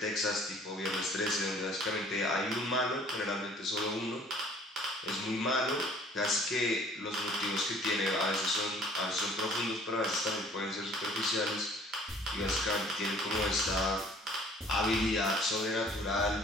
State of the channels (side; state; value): both; normal; correlation 0.54